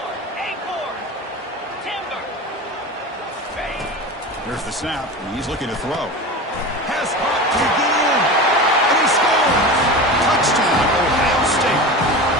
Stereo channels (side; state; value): both; normal; correlation 0.29